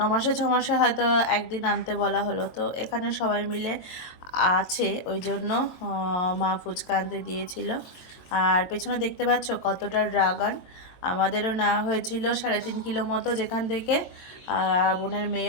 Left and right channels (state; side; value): late; right; 22 ms